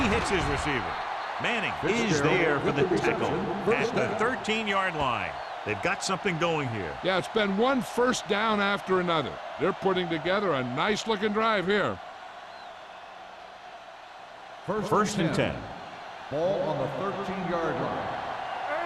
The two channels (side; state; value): both; identical; correlation 1.00